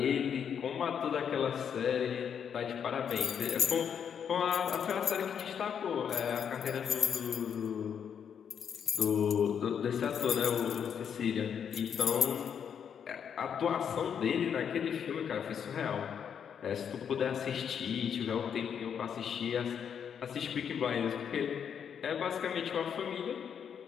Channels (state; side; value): quieter; right; 7.8 dB